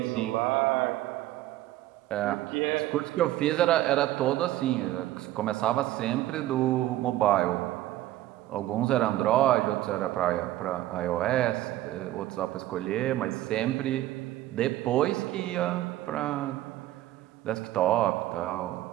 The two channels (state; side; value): quieter; left; 14.9 dB